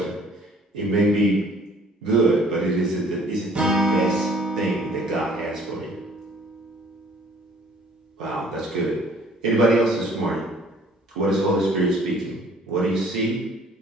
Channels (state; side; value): normal; both; correlation 0.56